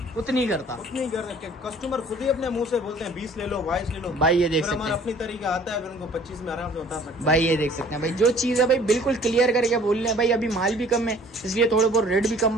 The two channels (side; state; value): both; normal; correlation 0.53